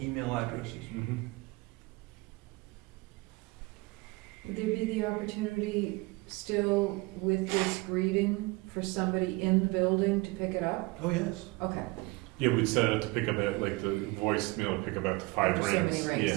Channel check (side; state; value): left; quieter; 24.1 dB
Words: email addresses. Mm-hmm. Would there be the opportunity still with this greeting for somebody in the building to pick it up? Oh, yes. Okay. Yeah, we'd set it up to pick up at, like, the voicemail to pick up after 5 After so rings. many rings,